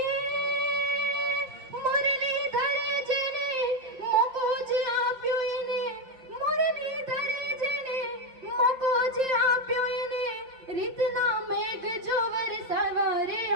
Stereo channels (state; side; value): late; left; 5.7 ms